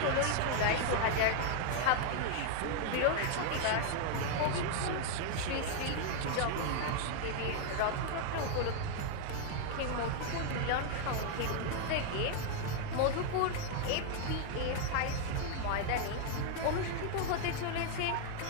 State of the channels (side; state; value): both; different; correlation 0.00